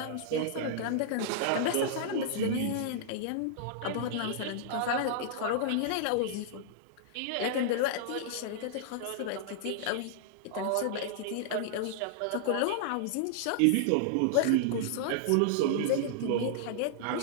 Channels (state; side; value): different; both; correlation -0.01